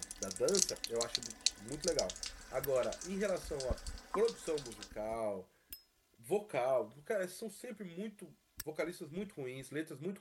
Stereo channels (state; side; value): identical; both; correlation 1.00